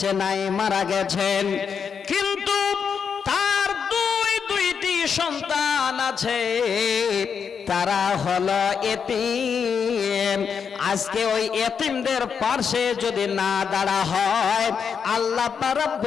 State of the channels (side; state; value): right; quieter; 6.6 dB